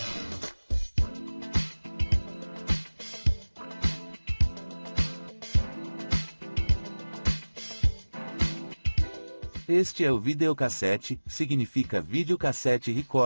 Este é o videocassete, significa videocassete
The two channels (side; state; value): both; inverted; correlation -1.00